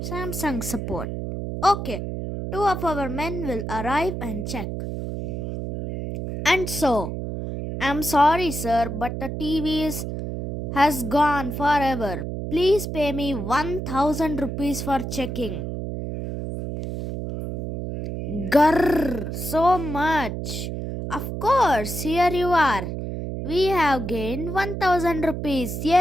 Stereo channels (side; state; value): right; noise; hum, 5 dB below the sound